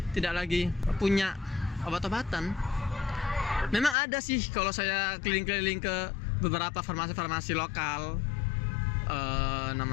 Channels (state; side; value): drops out; right; at 4.0 s